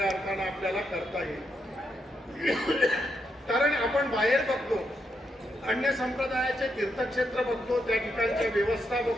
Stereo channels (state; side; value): normal; both; correlation 0.81